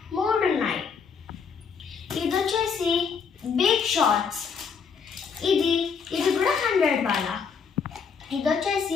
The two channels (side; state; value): right; quieter; 6.0 dB